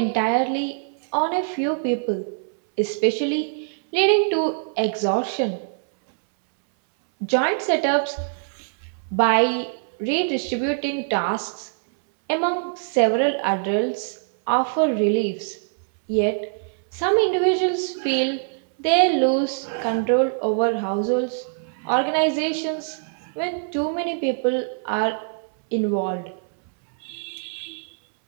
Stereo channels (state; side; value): silent; left; 63 dB below the other